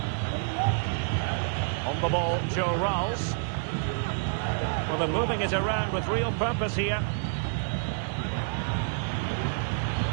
On the ball, Joe Rolls. Well, they're moving it around with real purpose here.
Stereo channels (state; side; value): silent; left; digital silence